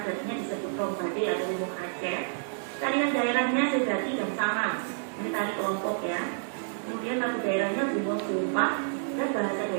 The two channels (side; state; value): left; silent; digital silence